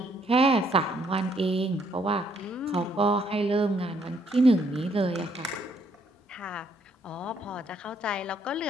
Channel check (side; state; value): both; normal; correlation 0.69